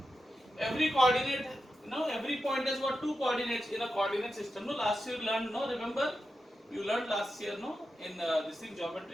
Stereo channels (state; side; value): normal; both; correlation 0.90